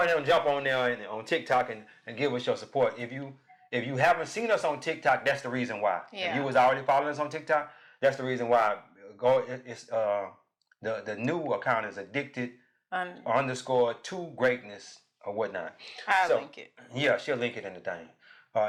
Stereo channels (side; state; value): both; identical; correlation 1.00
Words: and jump on there on TikTok and give us your support. If you haven't seen us on TikTok, that's the reason why. If you was already following us on TikTok, that's the reason why. It's the new account is Addicted _to Greatness or whatnot. I'll link it. Yeah, she'll link it in the thing.